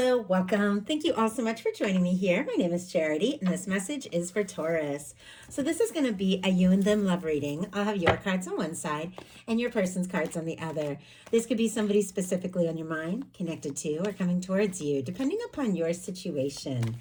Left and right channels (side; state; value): both; identical; correlation 1.00